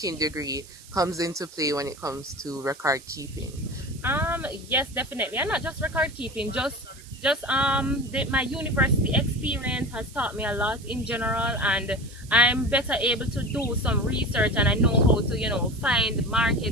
degree comes into play when it comes to record keeping. Yes, definitely, and not just record keeping, just my university experience has taught me a lot in general, and I'm better able to do some research, and I know how to find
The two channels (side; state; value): right; noise; hiss, 20 dB below the sound